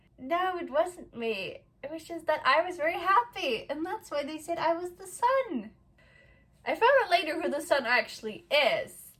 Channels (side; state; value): both; identical; correlation 1.00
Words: No, it wasn't me. It was just that I was very happy, and that's why they said I was the son. I found out later who the son actually is.